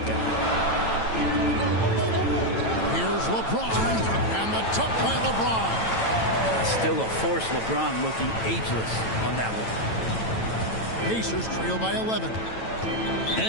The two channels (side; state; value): right; late; 9.0 ms